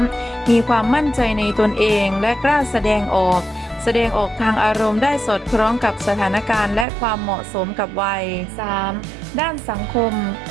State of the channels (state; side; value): drops out; left; at 6.9 s